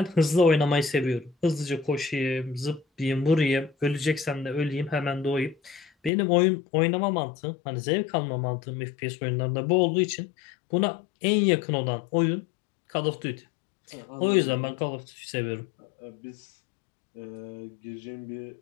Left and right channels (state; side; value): drops out; right; at 6.1 s